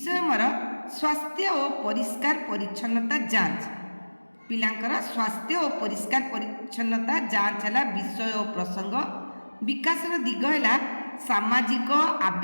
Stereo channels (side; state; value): both; inverted; correlation -1.00